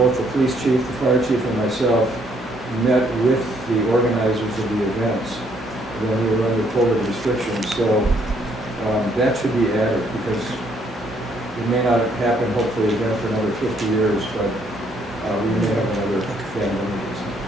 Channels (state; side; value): normal; both; correlation 0.69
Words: the police chief, the fire chief, and myself met with the organizers of the events when we were under COVID restrictions. So that should be added, because it may not happen, hopefully, again for another 50 years, but we may have another pandemic.